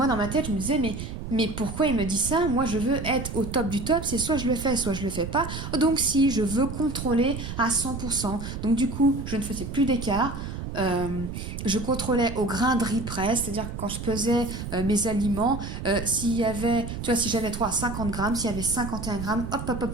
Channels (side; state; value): right; noise; rumble, 7 dB below the sound